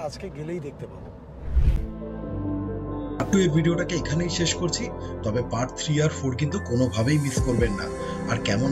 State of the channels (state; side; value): identical; both; correlation 1.00